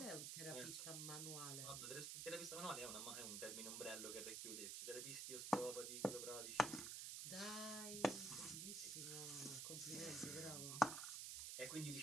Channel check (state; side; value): noise; right; hiss, 2 dB below the sound